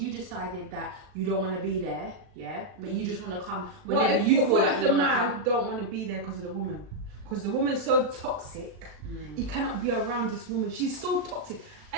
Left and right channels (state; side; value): late; left; 37 ms